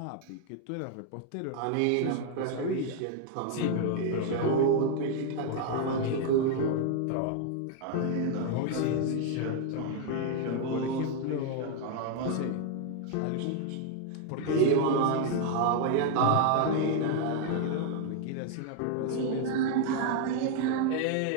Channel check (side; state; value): both; different; correlation 0.00